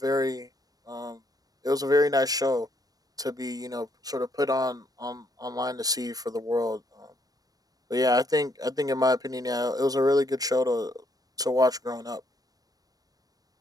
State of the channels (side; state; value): left; late; 0.18 ms